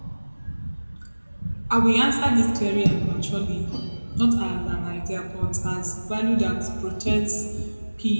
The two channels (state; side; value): inverted; both; correlation -1.00